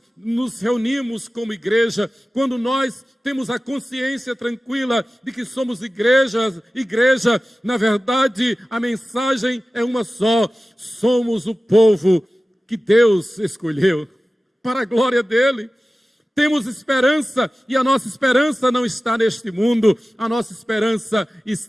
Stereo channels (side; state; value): both; normal; correlation 0.96